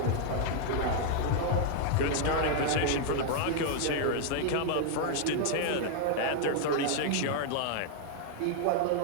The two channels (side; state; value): both; different; correlation 0.00